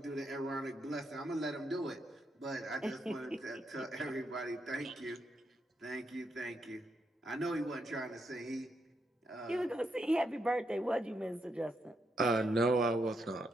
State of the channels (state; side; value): normal; both; correlation 0.80